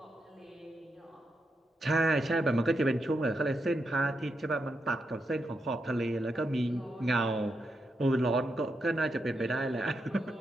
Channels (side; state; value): both; normal; correlation 0.84